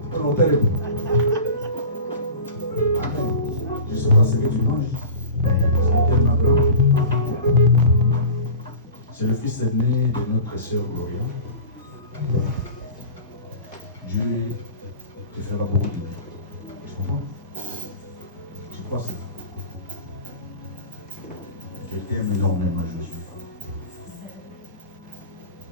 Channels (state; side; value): inverted; both; correlation -0.35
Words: Je ne sais pas ce que tu manges, mais c'est tellement grand. C'est le fils aîné de notre sœur Gloria. Dieu te fera beaucoup de bien. Tu comprends? Tu crois ça? Je t'aime énormément, Josué.